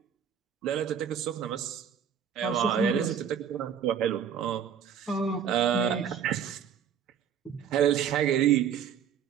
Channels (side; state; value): left; quieter; 8.2 dB